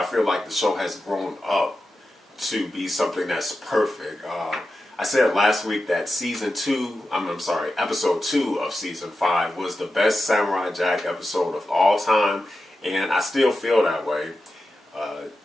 feel like the show has grown up to be something that's perfect. I said last week that episode 2 of Season 5 was the best Samurai Jack episode of all time, and I still feel that way.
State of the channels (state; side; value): normal; both; correlation 0.91